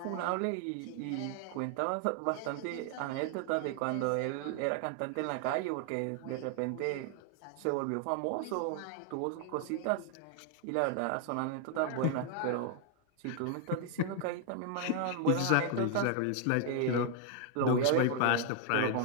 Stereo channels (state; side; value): different; both; correlation 0.00